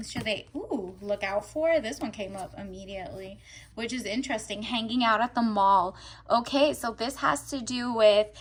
should they look out for? This one came up immediately, which is interesting. Hanging out at the mall. Okay, so this has to do with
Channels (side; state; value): both; identical; correlation 1.00